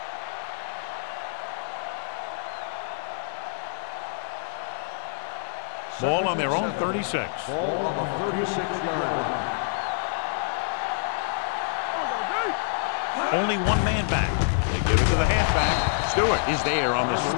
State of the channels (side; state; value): right; silent; 57 dB below the other